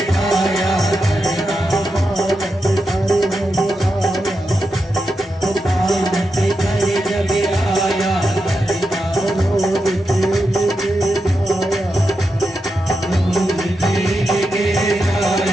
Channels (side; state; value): both; normal; correlation 0.87